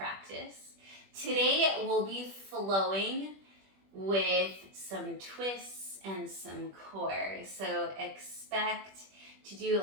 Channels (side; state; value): left; late; 21 ms